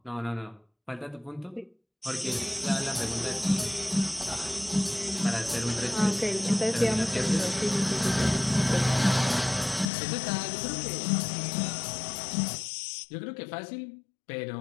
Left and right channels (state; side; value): drops out; right; at 9.9 s